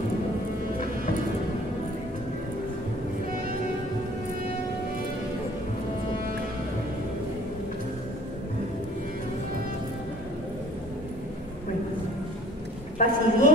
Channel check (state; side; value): normal; both; correlation 0.53